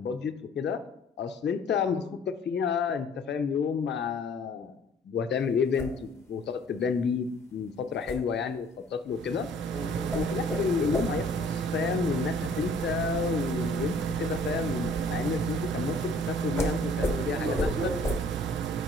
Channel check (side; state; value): both; normal; correlation 0.55